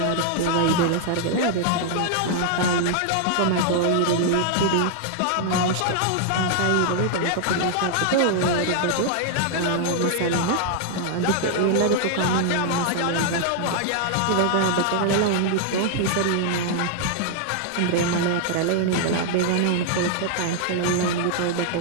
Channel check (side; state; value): both; different; correlation 0.00